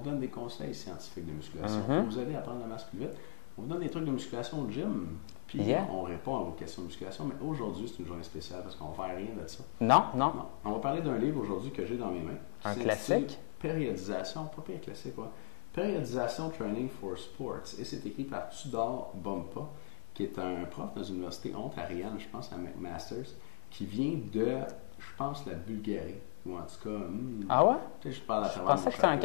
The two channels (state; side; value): silent; right; digital silence